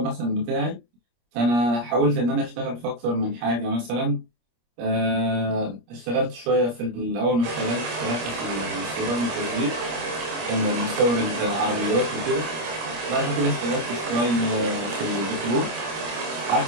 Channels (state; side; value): late; left; 25 ms